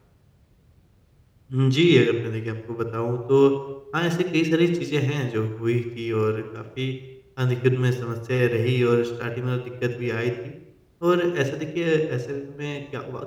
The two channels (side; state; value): both; identical; correlation 1.00